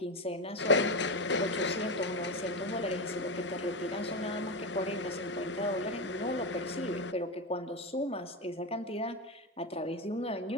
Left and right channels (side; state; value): both; normal; correlation 0.13